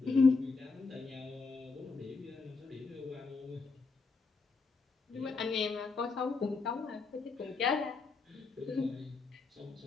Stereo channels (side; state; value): right; quieter; 4.2 dB